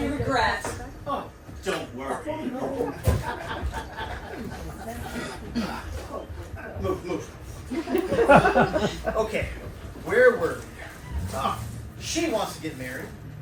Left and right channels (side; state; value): both; identical; correlation 1.00